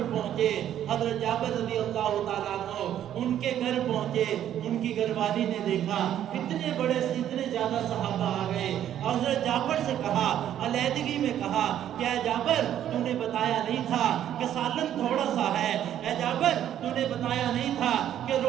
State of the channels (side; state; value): left; quieter; 10.8 dB